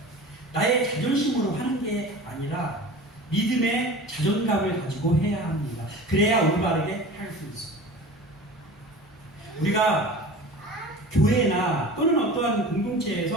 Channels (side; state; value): both; normal; correlation 0.37